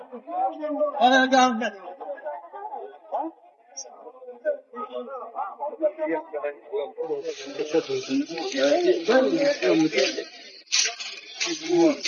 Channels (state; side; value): identical; both; correlation 1.00